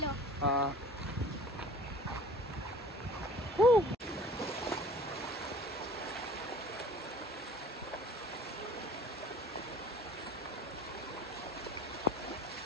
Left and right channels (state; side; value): normal; both; correlation 0.46